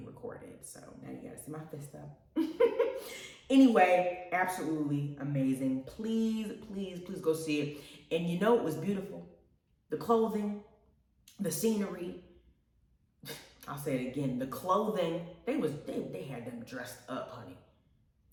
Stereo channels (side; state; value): both; identical; correlation 1.00